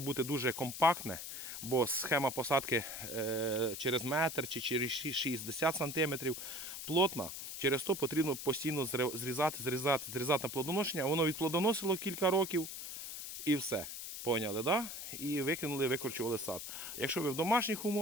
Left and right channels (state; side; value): noise; left; hiss, 8 dB below the sound